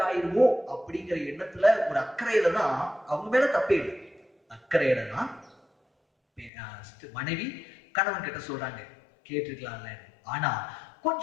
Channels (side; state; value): right; drops out; at 6.5 s